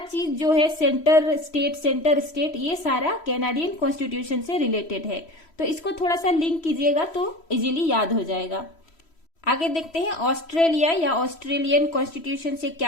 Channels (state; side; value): late; right; 3.1 ms